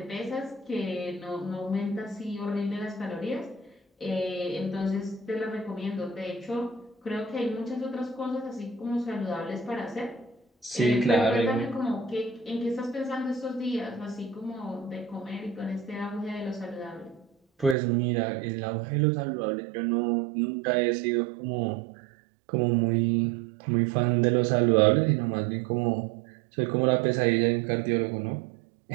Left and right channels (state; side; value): drops out; left; at 17.8 s